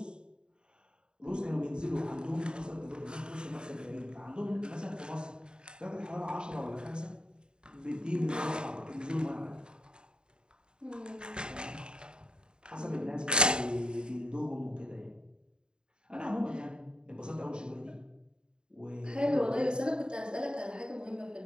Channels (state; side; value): late; left; 0.049 ms